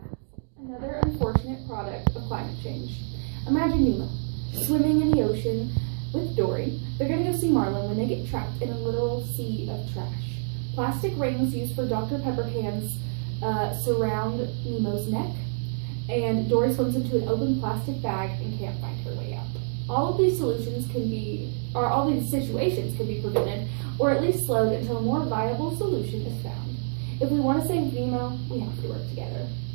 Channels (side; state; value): left; silent; digital silence